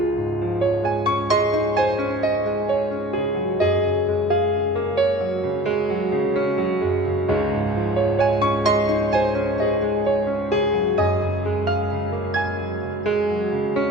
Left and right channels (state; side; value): normal; both; correlation 0.43